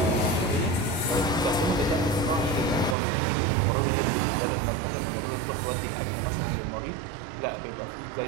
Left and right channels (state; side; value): drops out; left; at 3.0 s